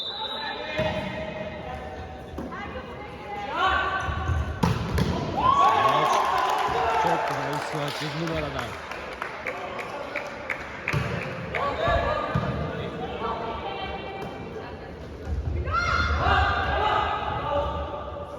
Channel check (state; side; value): identical; both; correlation 1.00